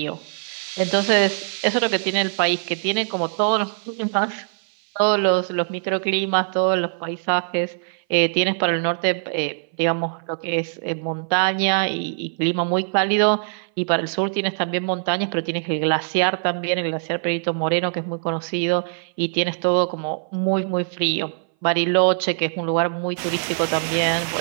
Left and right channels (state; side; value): silent; left; 59 dB below the other